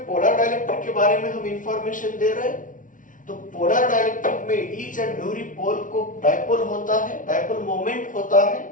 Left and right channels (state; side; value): late; right; 0.38 ms